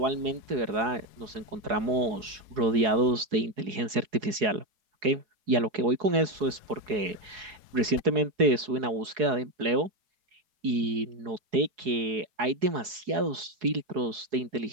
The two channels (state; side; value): late; left; 4.7 ms